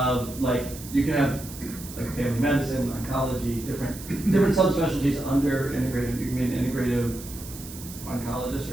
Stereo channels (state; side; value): noise; right; hiss, 14 dB below the sound